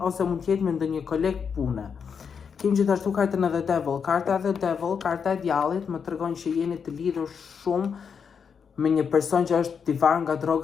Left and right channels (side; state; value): right; quieter; 6.6 dB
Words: ose mund të jetë me ndonjë koleg pune. Kemi gjithashtu kartën e The Devil. Karta e The Devil, karta e djallit, më tregon që jeni të lidhur shumë me një person që është i varur nga